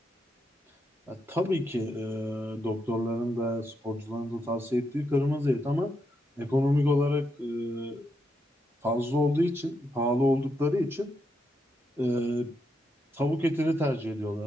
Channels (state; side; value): normal; both; correlation 0.81